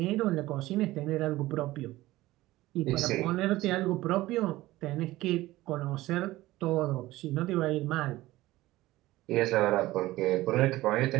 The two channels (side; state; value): left; quieter; 17.4 dB